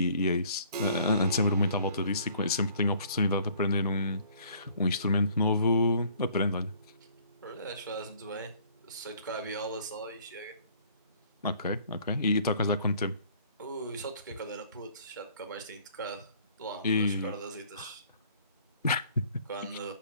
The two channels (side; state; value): both; inverted; correlation -0.57